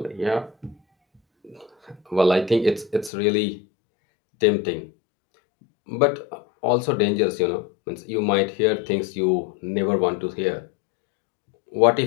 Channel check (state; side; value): drops out; right; at 3.1 s